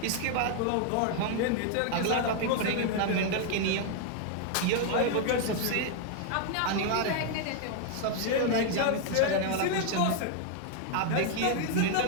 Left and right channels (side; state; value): both; different; correlation 0.00